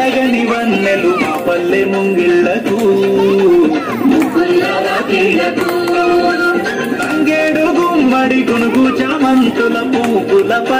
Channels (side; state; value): both; identical; correlation 1.00